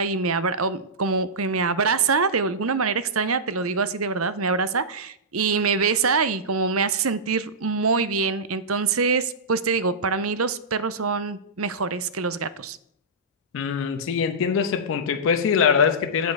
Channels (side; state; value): both; normal; correlation -0.16